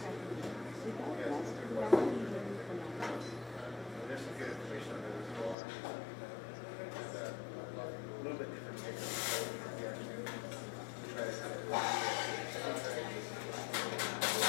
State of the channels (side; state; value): right; drops out; at 5.6 s